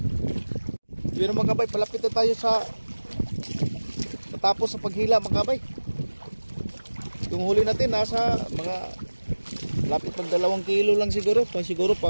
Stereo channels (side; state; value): both; inverted; correlation -1.00